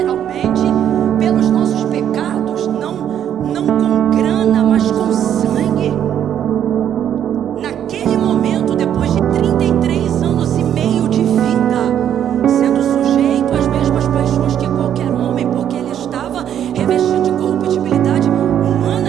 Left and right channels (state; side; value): quieter; left; 9.8 dB